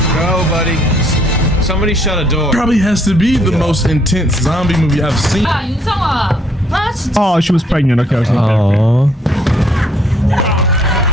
Go, buddy. Somebody shut a door. Probably has to be the most intense zombie movie I've seen. 야 윤성아. 아 진짜. Oh, she was pregnant. Okay, okay. Oh.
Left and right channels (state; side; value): normal; both; correlation 0.66